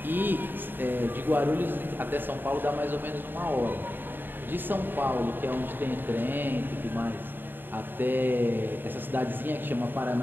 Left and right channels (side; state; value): left; late; 0.094 ms